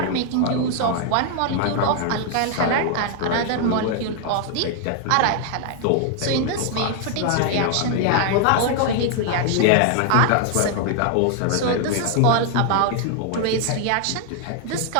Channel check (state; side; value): different; both; correlation 0.00